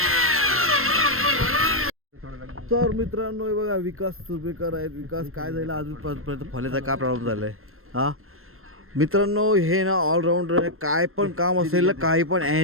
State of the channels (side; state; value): left; late; 0.62 ms